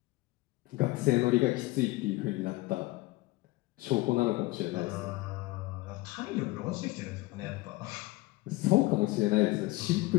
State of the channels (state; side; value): quieter; right; 19.9 dB